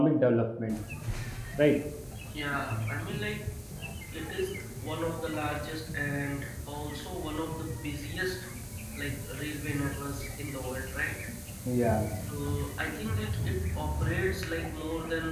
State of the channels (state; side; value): identical; both; correlation 1.00